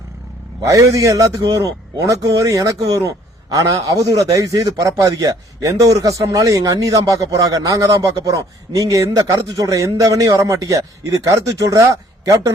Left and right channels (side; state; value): both; normal; correlation 0.59